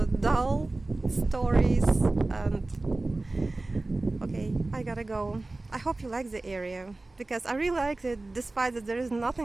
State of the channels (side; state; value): left; quieter; 3.1 dB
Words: dull stories, and okay, I gotta go. I hope you like the area because I really like it, despite that there is